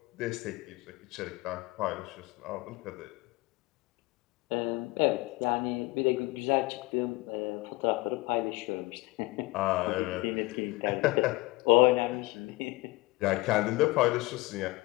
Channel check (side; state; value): right; quieter; 22.0 dB